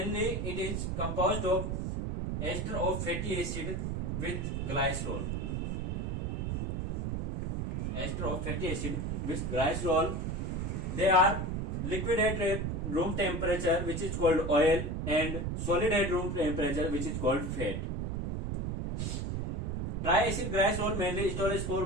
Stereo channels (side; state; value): right; noise; rumble, 1 dB below the sound